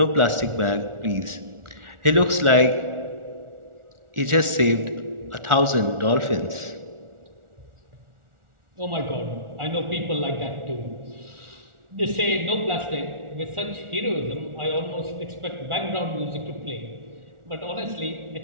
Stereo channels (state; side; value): late; left; 1.4 ms